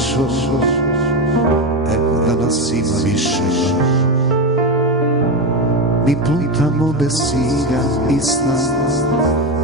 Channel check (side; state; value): both; normal; correlation 0.15